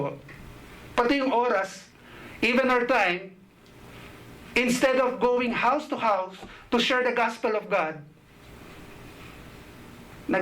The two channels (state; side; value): identical; both; correlation 1.00